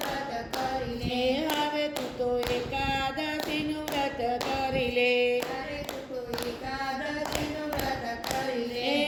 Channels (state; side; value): identical; both; correlation 1.00